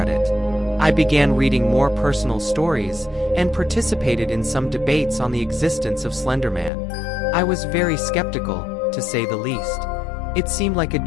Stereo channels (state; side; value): drops out; right; at 6.7 s